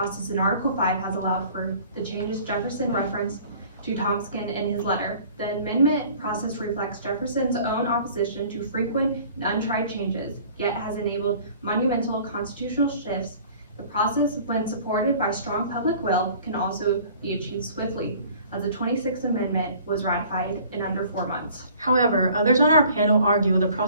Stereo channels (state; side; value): inverted; both; correlation -0.50